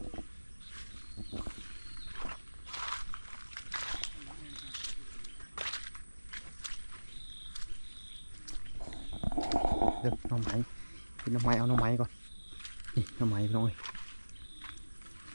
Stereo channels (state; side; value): inverted; both; correlation -1.00